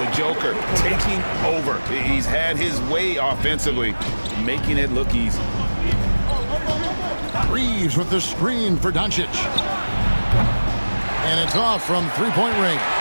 Joker taking over. He's had his way offensively, making it look easy. Reaves with the screen for Dončić. And it's off from three-point range.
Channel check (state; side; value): inverted; both; correlation -1.00